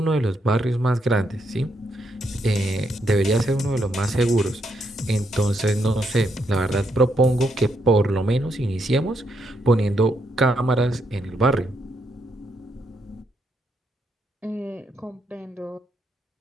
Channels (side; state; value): both; normal; correlation 0.78